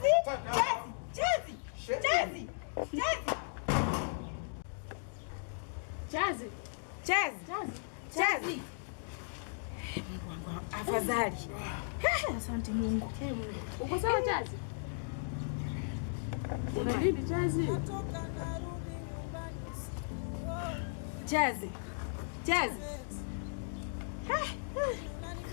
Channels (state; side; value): silent; right; digital silence